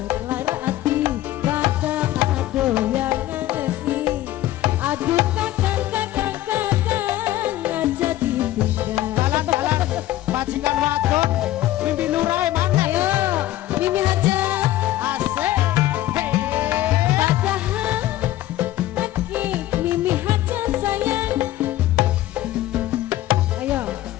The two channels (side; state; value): right; quieter; 14.6 dB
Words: Majikan wadon Mimi Lurah mana? Ayo, Mimi aja. Asik. Hey. Padahal lagi Mimi aja sayang. Ayo,